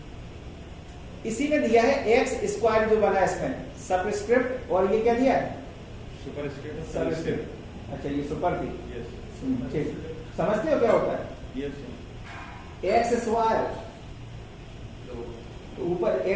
इसी में दिया है x² जो बना है इसमें सबस्क्रिप्ट, और ये क्या दिया है, सुपरस्क्रिप्ट। अच्छा ये सुपर थी, ठीक, समझते हो क्या होता है, x² तो ऊपर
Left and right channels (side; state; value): both; identical; correlation 1.00